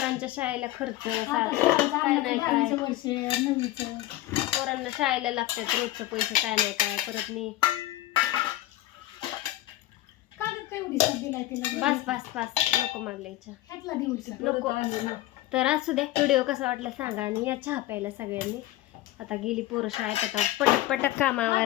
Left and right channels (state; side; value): quieter; right; 15.8 dB